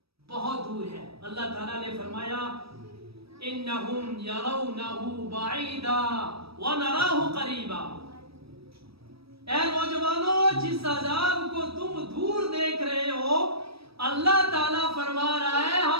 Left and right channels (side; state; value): left; late; 0.77 ms